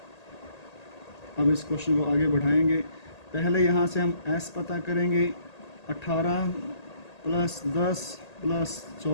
अब इस क्वेश्चन को आगे बढ़ाएंगे। पहले यहाँ से हम s पता करेंगे। 18 प्लस 10 प्लस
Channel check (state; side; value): late; right; 1.8 ms